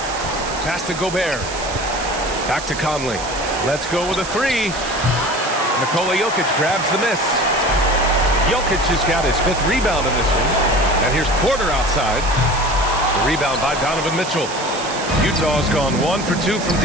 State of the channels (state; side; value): noise; right; hiss, 11 dB below the sound